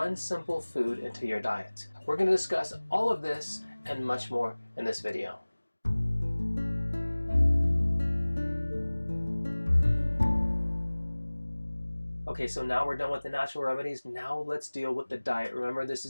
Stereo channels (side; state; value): both; inverted; correlation -1.00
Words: simple food into your diet? We're going to discuss all of this and much more in this video. Okay, so now we're done with the natural remedies. Now let's deal with the diet. Remember, this